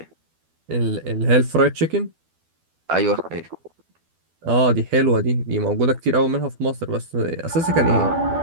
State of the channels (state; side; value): late; left; 12 ms